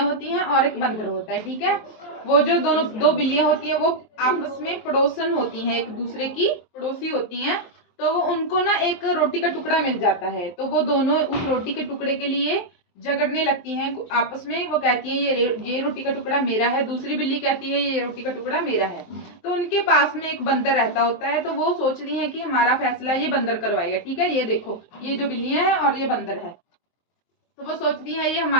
होती हैं और एक बंदर होता है, ठीक है। वो जो दोनों दो बिल्लियां होती हैं वो आपस में पड़ोसन होती हैं, एक दूसरे की पड़ोसी होती हैं। तो वो उनको ना एक रोटी का टुकड़ा मिल जाता है, तो वो दोनों उस रोटी के टुकड़े के लिए झगड़ने लगती हैं आपस में। वो कहती है ये रोटी का टुकड़ा मेरा है, दूसरी बिल्ली कहती है ये रोटी का टुकड़ा मेरा है। तो उनके पास में एक बंदर रहता होता है, तो वो सोचती हैं कि हमारा फैसला ये बंदर करवाएगा, ठीक है। ये देखो, ये जो बिल्लियां हैं और ये बंदर है, तो वो सोचती है ये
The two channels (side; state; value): right; late; 23 ms